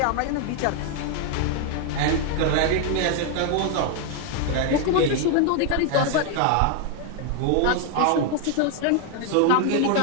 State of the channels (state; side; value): different; both; correlation 0.00